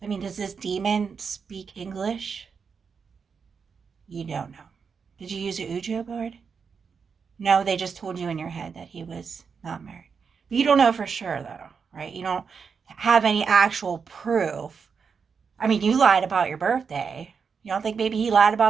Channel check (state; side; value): quieter; left; 5.9 dB